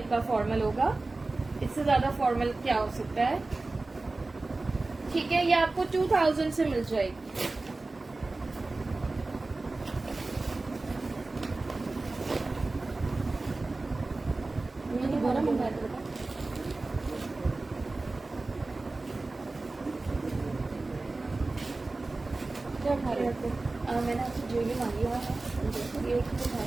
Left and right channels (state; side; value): quieter; left; 3.3 dB